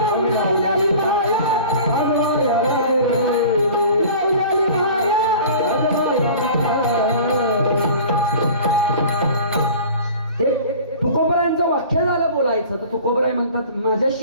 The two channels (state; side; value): inverted; both; correlation -0.42